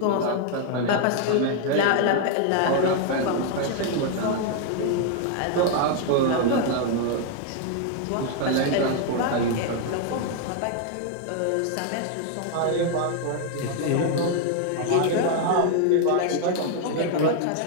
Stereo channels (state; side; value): different; both; correlation 0.00